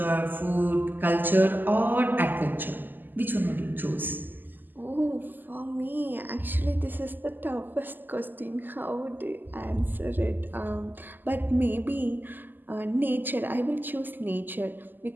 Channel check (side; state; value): left; late; 0.089 ms